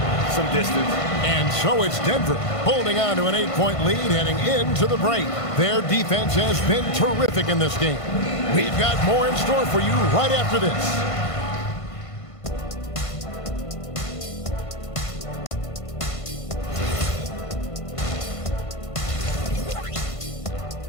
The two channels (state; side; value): late; right; 1.5 ms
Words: some distance. And so it's Denver holding on to an 8-point lead heading into the break. Their defense has been terrific in this game. We've got more in store for you right after this.